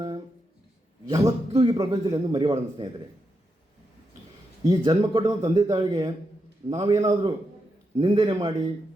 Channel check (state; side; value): normal; both; correlation 0.85